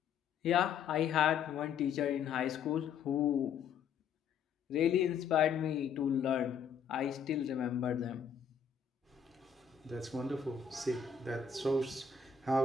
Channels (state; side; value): quieter; right; 7.0 dB